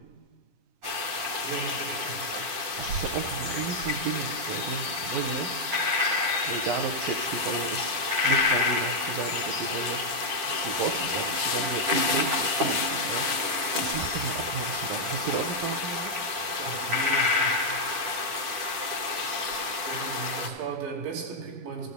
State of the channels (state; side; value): late; left; 10 ms